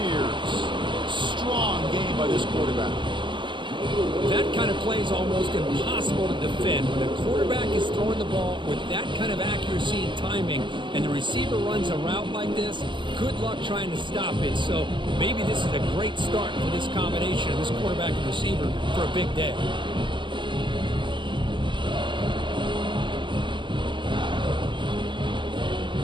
Strong game by this quarterback. That kind of play is almost impossible to defend. When a quarterback is throwing the ball with that kind of accuracy and timing, and the receiver runs a route like this, good luck trying to stop it. So maybe this is a great start for this combination of this quarterback and receiver for a big day.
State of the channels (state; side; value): late; left; 0.23 ms